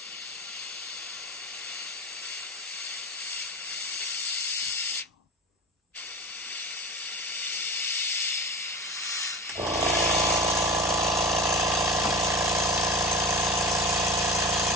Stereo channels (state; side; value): normal; both; correlation 0.33